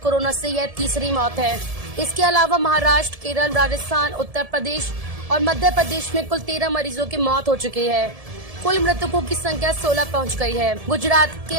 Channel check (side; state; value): left; late; 1.7 ms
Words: से यह तीसरी मौत है। इसके अलावा महाराष्ट्र, केरल, राजस्थान, उत्तर प्रदेश और मध्य प्रदेश में कुल 13 मरीजों की मौत हो चुकी है। कुल मृतकों की संख्या 16 पहुंच गई है। गुजरात के